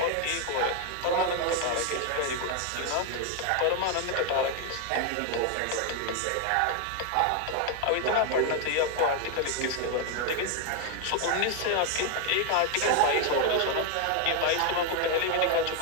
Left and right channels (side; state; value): both; different; correlation 0.01